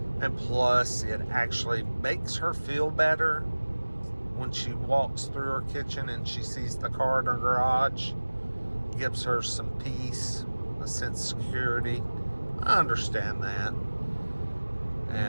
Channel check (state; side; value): inverted; both; correlation -1.00